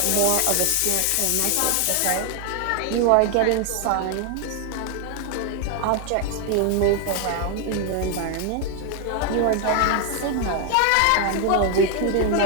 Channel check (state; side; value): different; both; correlation 0.01